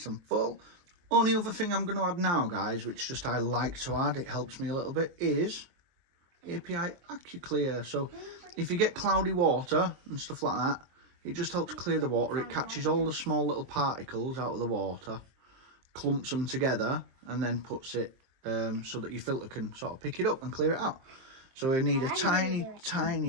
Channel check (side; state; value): left; late; 23 ms